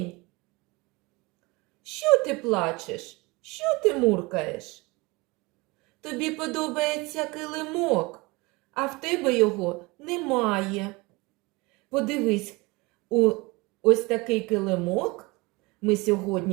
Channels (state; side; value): quieter; left; 24.6 dB